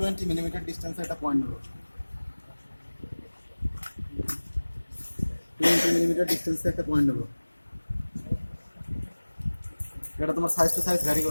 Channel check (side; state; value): both; inverted; correlation -1.00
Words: মিলিমিটার ডিস্টেন্সে একটা পয়েন্ট নেব। 20 মিলিমিটার ডিস্টেন্সে একটা পয়েন্ট নেব। এটা তোমার সাইজ টু সাইজ ভ্যারি